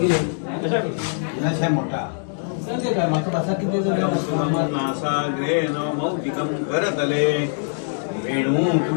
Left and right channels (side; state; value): right; silent; digital silence